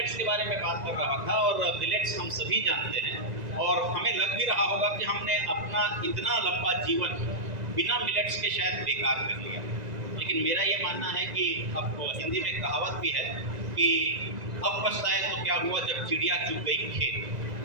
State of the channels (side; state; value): left; late; 1.9 ms